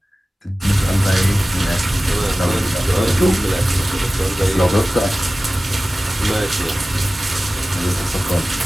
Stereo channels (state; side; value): normal; both; correlation 0.97